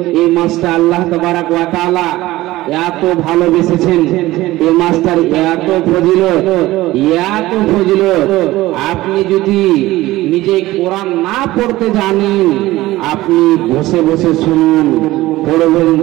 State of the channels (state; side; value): quieter; left; 17.5 dB